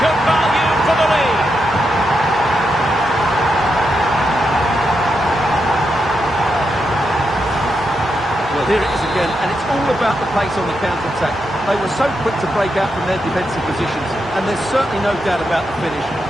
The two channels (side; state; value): both; normal; correlation 0.84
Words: value for the lead. Well, here it is again, and it's all about the pace on the counter-attack. They were so quick to break out from their defensive positions, and there's certainly no doubt about the finish.